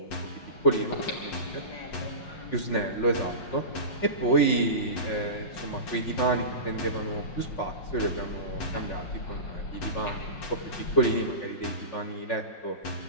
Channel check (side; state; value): right; late; 5.5 ms